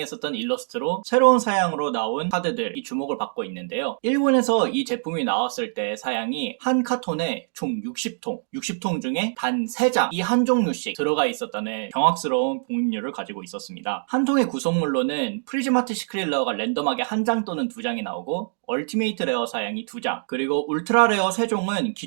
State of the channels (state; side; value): silent; left; digital silence